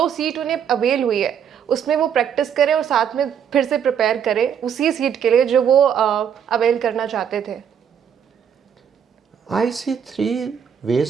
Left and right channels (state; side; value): quieter; left; 8.2 dB